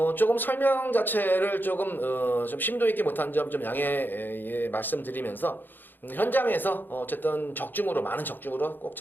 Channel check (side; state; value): right; late; 0.092 ms